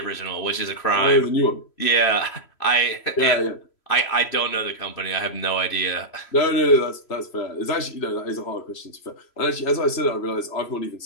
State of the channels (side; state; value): right; late; 3.1 ms